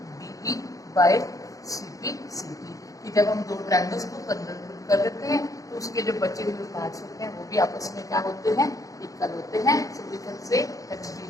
DE by CP। कि जब हम दो ट्रायंगल्स को कन्वर्ट कर देते हैं तो उसके जो बचे हुए पार्ट्स होते हैं वो भी आपस में क्या होते हैं? इक्वल होते हैं। So we can say that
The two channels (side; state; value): right; late; 0.17 ms